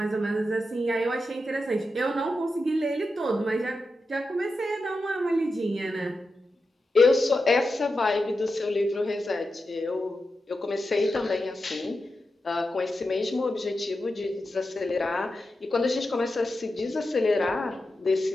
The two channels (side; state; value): both; normal; correlation 0.90